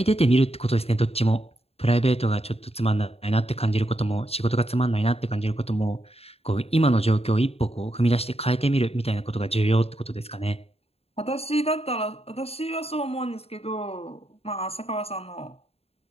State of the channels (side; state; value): right; late; 0.29 ms